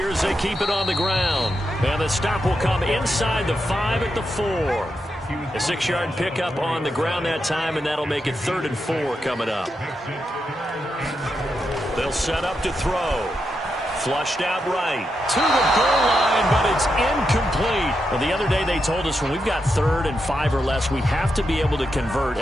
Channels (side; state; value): both; normal; correlation 0.85